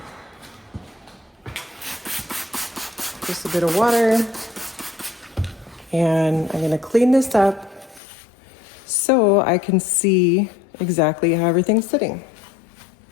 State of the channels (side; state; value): right; drops out; at 8.0 s